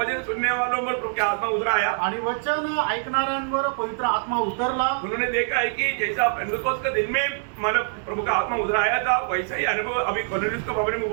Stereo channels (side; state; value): left; silent; digital silence